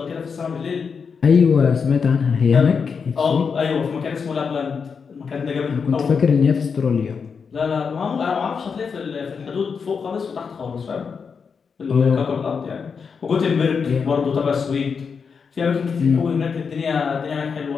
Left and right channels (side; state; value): right; quieter; 5.8 dB